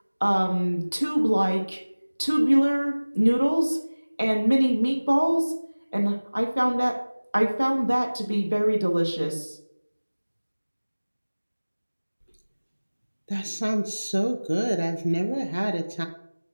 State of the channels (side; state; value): both; inverted; correlation -1.00